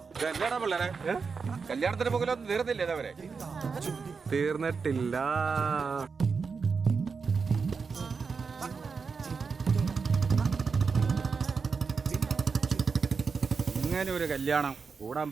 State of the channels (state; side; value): quieter; left; 5.2 dB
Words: എന്നാടാ പിള്ളേരെ കല്യാണത്തിന് പോകലൊന്നും തീർന്നില്ലേ അവരെ? തീർന്നിട്ടില്ല. ഇങ്ങനെ ഒരു കല്യാണം കൂടാൻ